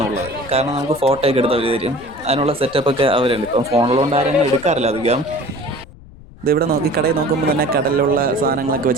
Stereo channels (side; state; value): left; noise; rumble, 20 dB below the sound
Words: ഉള്ളത്, കാരണം നമുക്ക് ഫോട്ടോയൊക്കെ എടുത്ത് അവർ തരും. അതിനുള്ള സെറ്റപ്പൊക്കെ അവരുണ്ട്. ഇപ്പം ഫോണിലുകൊണ്ട് ആരെങ്കിലും എടുക്കാറില്ല അധികം. ഇതിവിടെ കടയിൽ നോക്കുമ്പോൾ തന്നെ കടലിലുള്ള സാധനങ്ങളൊക്കെ